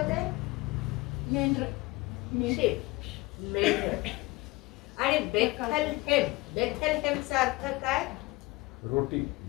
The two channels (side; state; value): right; quieter; 22.4 dB